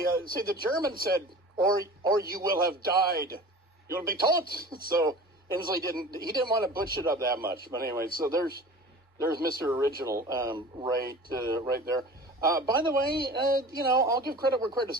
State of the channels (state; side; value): normal; both; correlation 0.39